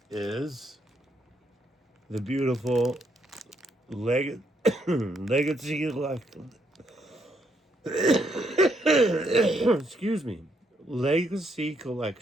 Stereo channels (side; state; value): both; normal; correlation 0.75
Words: is. The beautiful legacy excuse me. Legacy